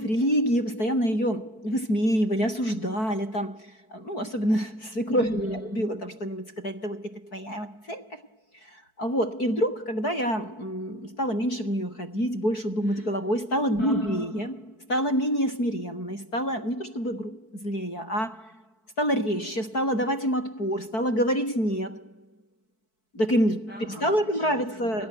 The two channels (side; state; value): right; late; 4.6 ms